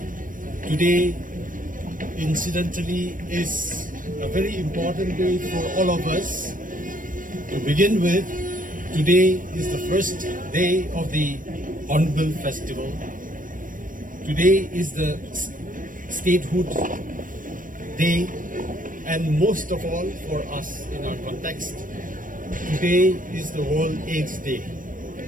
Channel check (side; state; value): left; late; 0.39 ms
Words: today incidentally is a very important day for all of us. To begin with, today is the first day of the Hornbill Festival. Today is the statehood day, and most of all for us in our context, today is the World AIDS Day.